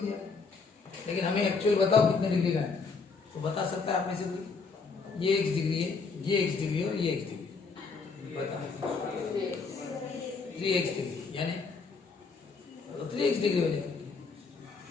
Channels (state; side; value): quieter; right; 4.7 dB